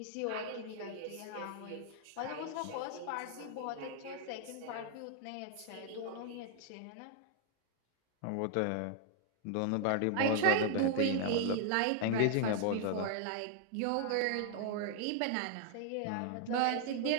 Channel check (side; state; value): both; different; correlation 0.00